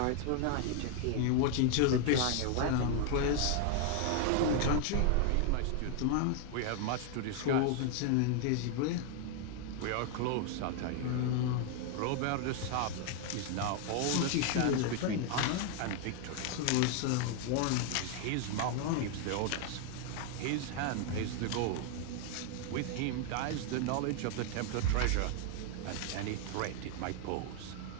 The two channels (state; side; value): different; both; correlation 0.00